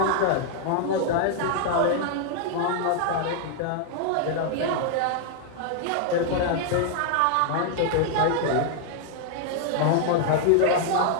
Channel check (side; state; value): both; different; correlation 0.00